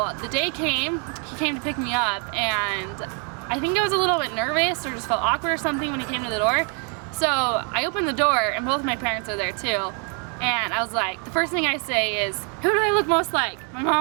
the day came, he came to pick me up, and I think I was a little bit nervous or just felt awkward or something when he came to the door. So I opened the door, and both my parents are there too. And I was like, the first thing I say is, who do I look most like, my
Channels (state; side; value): quieter; left; 38.4 dB